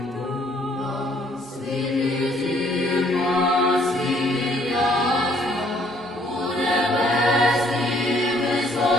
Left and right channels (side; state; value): both; normal; correlation 0.64